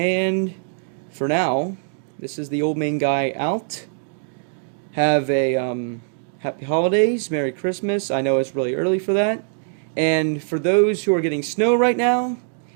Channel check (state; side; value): silent; left; digital silence